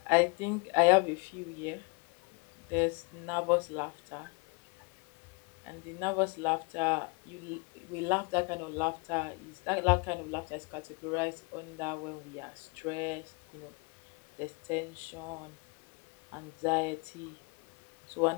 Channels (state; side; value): quieter; right; 30.3 dB